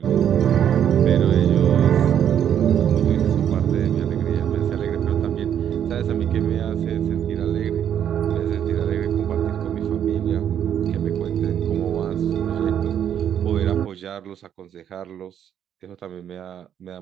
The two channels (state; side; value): quieter; left; 9.4 dB